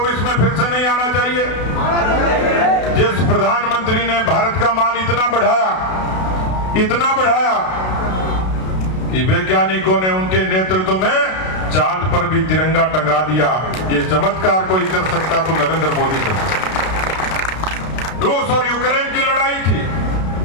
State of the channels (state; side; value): late; right; 32 ms